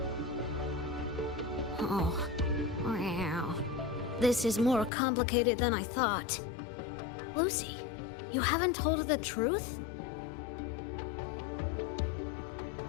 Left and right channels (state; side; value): drops out; right; at 4.9 s